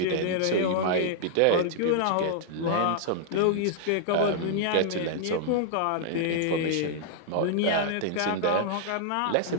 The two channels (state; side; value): different; both; correlation -0.01